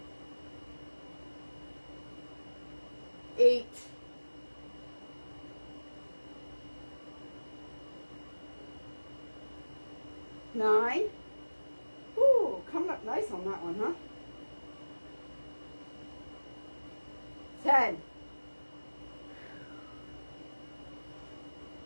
8. 9. Ooh, coming up nice on that one, huh? 10.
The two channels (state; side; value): inverted; both; correlation -1.00